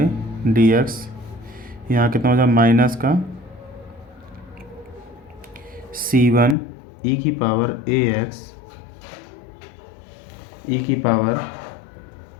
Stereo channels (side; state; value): right; drops out; at 6.6 s